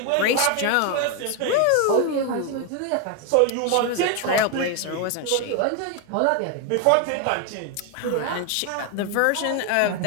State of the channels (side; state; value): both; different; correlation 0.01